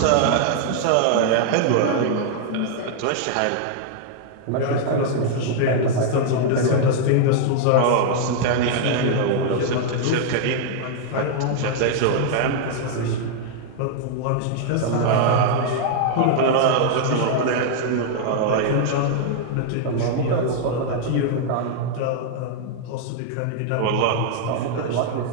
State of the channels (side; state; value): both; different; correlation -0.01